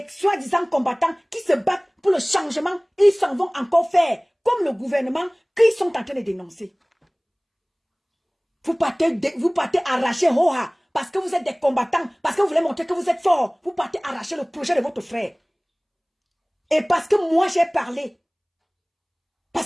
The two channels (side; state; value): both; identical; correlation 1.00